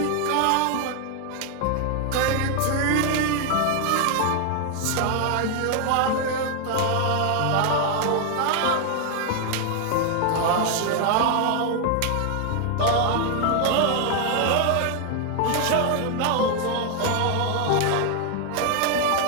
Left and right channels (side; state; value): both; different; correlation 0.00